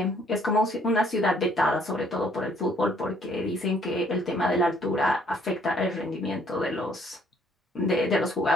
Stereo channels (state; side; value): normal; both; correlation 0.64